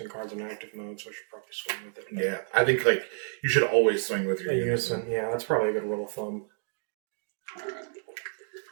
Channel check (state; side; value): silent; left; 58 dB below the other